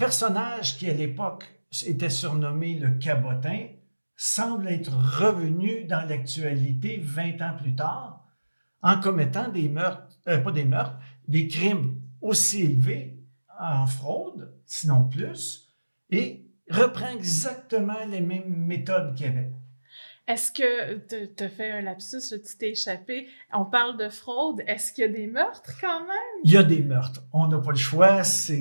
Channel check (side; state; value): both; inverted; correlation -1.00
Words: qui, à l'époque, était surnommé le cabotin, semble être revenu dans l'actualité 20 ans plus tard en commettant des crimes aussi élevés en fraude, sinon plus, et reprend exactement les mêmes méthodes qu'il y avait. Est-ce que tu as fait un lapsus, là, tu t'es échappé? On parle de fraude. Est-ce qu'il y a des meurtres quand même? Il y a des meurtres. On n'a pas le choix.